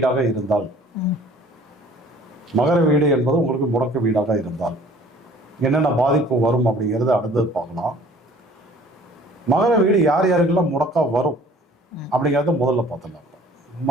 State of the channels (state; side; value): normal; both; correlation 0.52